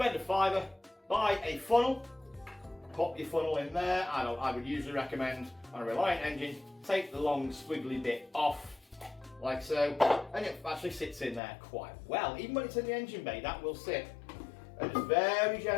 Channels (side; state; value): right; drops out; at 11.4 s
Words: a fiver, buy a funnel, pop your funnel in there. I would usually recommend on a Reliant engine, take the long squiggly bit off, like so, and it actually sits in there quite well. Even when it's in the engine bay, that will sit. And just very